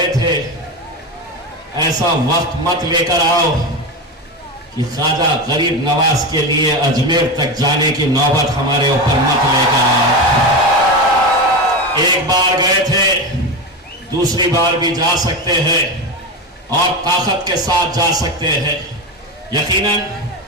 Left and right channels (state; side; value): normal; both; correlation 0.19